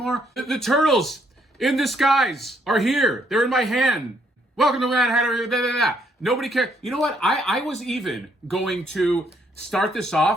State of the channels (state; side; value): normal; both; correlation 0.71